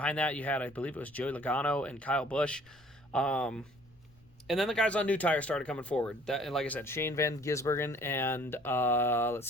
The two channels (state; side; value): noise; left; rumble, 30 dB below the sound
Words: that you had, I believe it was Joey Logano and Kyle Busch. And then the guys on new tires started coming forward. And like I said, Shane Van Gisbergen and,